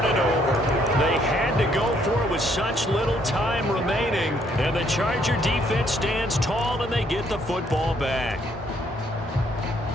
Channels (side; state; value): both; normal; correlation 0.68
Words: it over. They had to go for it with such little time remaining, and the Charger defense stands tall, and they get the football back.